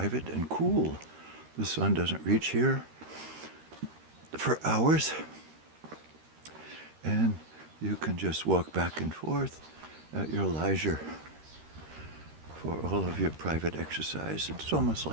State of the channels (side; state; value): left; late; 13 ms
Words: and cool. The sun doesn't reach here for hours, and you can just walk back and forth at your leisure for all of your private exercise. It's almost